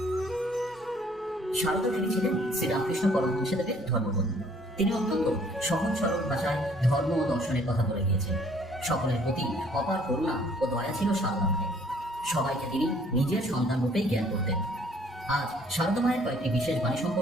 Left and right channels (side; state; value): both; normal; correlation 0.59